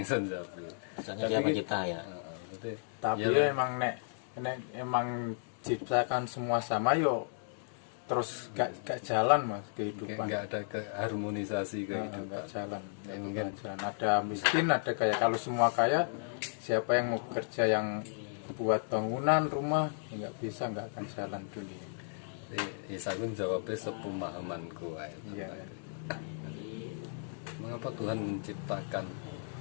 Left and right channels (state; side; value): silent; right; digital silence